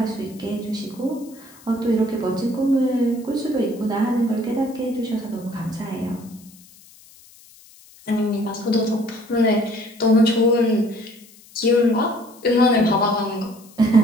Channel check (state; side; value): noise; left; hiss, 24 dB below the sound